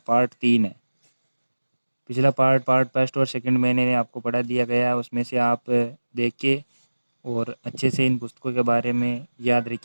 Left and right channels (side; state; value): both; inverted; correlation -1.00